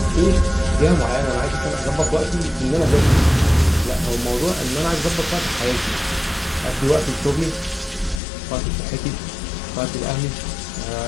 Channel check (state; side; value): drops out; right; at 8.2 s